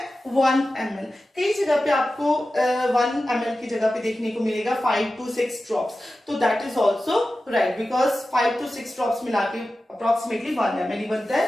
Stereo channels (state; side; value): normal; both; correlation 0.94